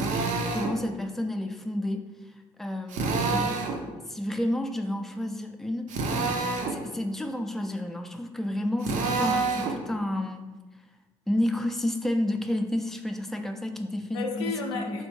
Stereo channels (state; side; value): normal; both; correlation 0.68